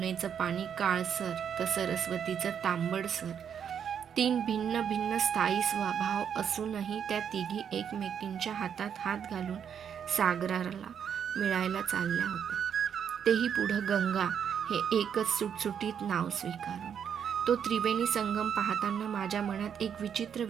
पाणी काळसर तर सरस्वतीचं तांबडसर. 3 भिन्न भिन्न स्थायी स्वभाव असूनही त्या तिघी एकमेकींच्या हातात हात घालून सागराला मिळायला चालल्या होत्या. तेही पुढं गंगा हे एकच सुटसुटीत नाव स्वीकारून. तो त्रिवेणी संगम पाहताना माझ्या मनात एक विचित्र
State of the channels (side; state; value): left; quieter; 8.0 dB